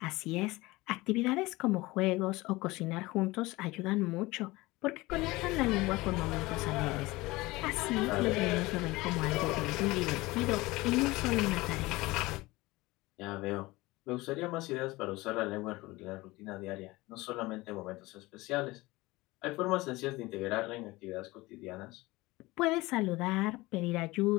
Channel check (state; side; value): quieter; right; 20.8 dB